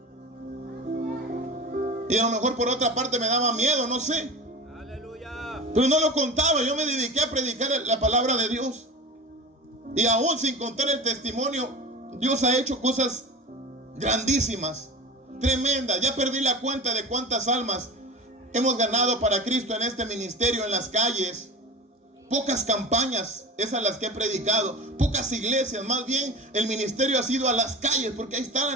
Y a lo mejor por otra parte me daba miedo, no sé. Aleluya. Pero no lo contaba. Yo me dediqué a predicar la palabra de Dios. Y aún sin contar el testimonio, Dios ha hecho cosas grandísimas, tremendas. Ya perdí la cuenta de cuántas almas hemos ganado para Cristo en este ministerio, en las calles. Pocas campañas, esas las que he predicado. Pocas iglesias, más bien el ministerio ha sido a las calles, porque ahí está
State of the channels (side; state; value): both; normal; correlation 0.32